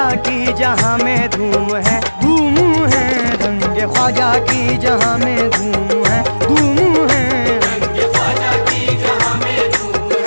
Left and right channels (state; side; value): inverted; both; correlation -1.00